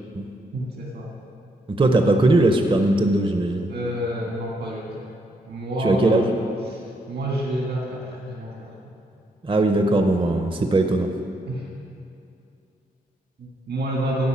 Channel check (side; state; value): both; normal; correlation 0.75